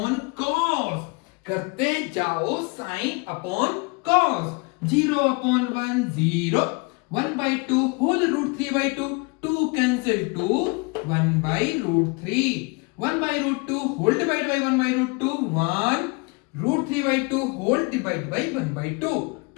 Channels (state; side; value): quieter; right; 29.3 dB